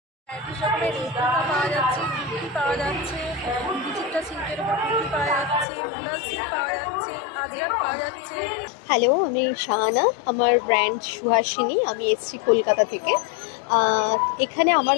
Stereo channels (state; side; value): drops out; right; at 5.7 s